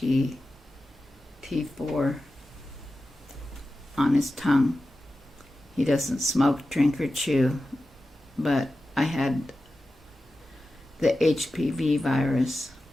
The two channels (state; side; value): normal; both; correlation 0.93